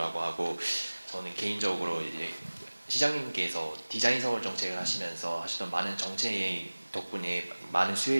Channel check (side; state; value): both; inverted; correlation -1.00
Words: 하고, 저는 개인적으로 이제 시장님께서 디자인 서울 정책을 하시면서 하셨던 많은 정책 덕분에 많은